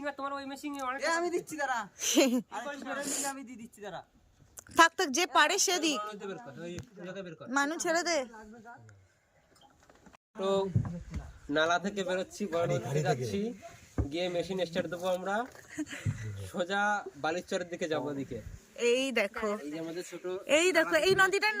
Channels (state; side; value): identical; both; correlation 1.00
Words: আর তোমার ওই মেশিং অনেক। আমি দিচ্ছি দাঁড়া। আমি দিয়ে দিচ্ছি দাঁড়া। থাক থাক, যে পারে সে দিক। মানু ছেড়ে দে। তো নালা থেকে বেরোচ্ছি, বড় নদীতে যাচ্ছি, গিয়ে মেশিন স্টার্ট দেবো আমরা, সোজা বালিচরের দিকে যাবো। ওদিকে এই দেখো, এই যে আমাদের ছোট, এই দেখো, এই নদীটার